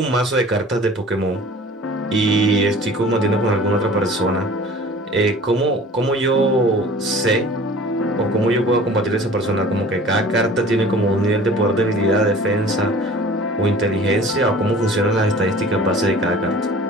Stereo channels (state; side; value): normal; both; correlation 0.45